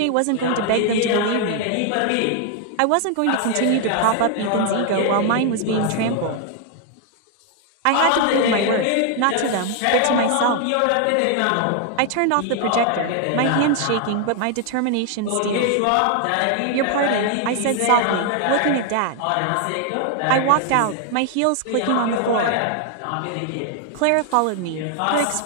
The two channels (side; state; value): both; different; correlation 0.00